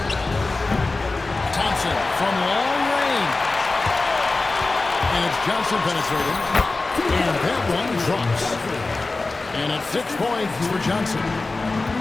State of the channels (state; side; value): quieter; right; 3.5 dB